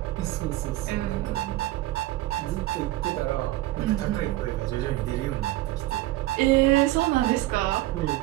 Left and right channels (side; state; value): left; quieter; 17.1 dB